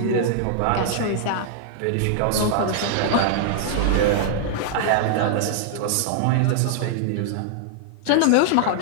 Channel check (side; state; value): both; different; correlation -0.01